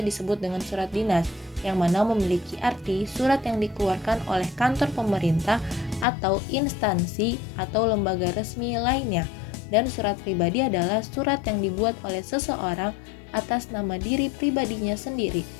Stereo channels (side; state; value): right; drops out; at 6.1 s